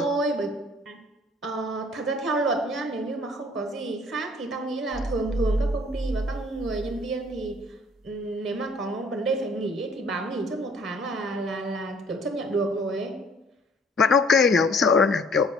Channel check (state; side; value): normal; both; correlation 0.57